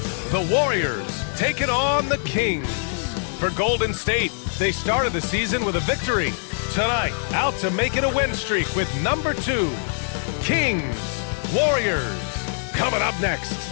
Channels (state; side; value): silent; right; 63 dB below the other